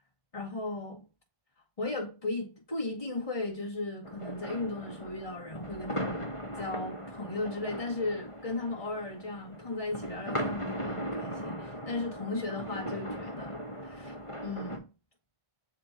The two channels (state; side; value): late; right; 1.5 ms